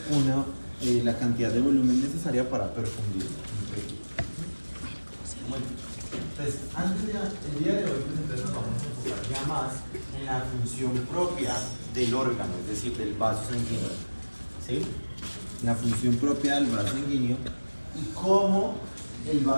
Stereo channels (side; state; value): both; inverted; correlation -1.00